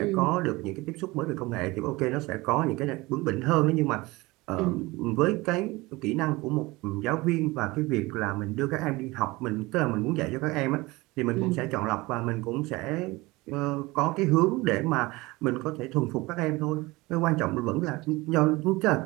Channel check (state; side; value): quieter; left; 21.8 dB